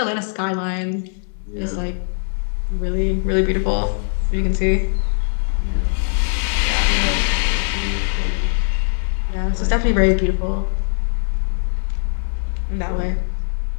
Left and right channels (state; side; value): silent; right; 65 dB below the other